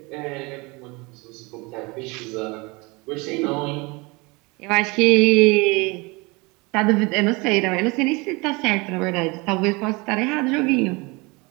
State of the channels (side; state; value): left; quieter; 26.2 dB